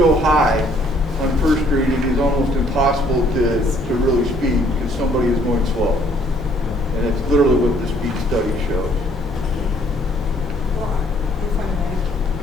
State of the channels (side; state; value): both; normal; correlation 0.63